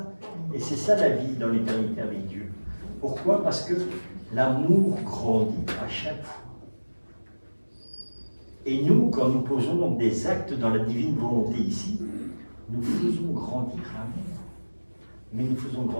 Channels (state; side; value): inverted; both; correlation -1.00